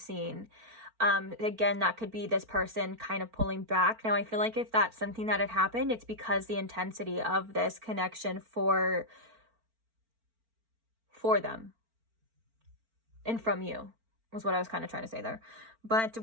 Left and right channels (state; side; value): late; left; 4.4 ms